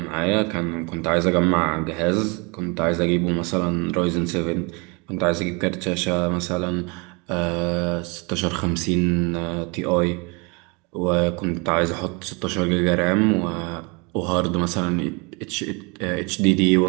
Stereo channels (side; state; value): left; quieter; 30.5 dB